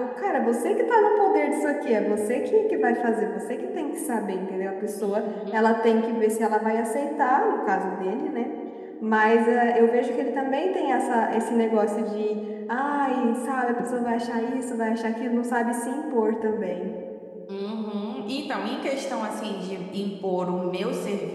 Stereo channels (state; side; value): identical; both; correlation 1.00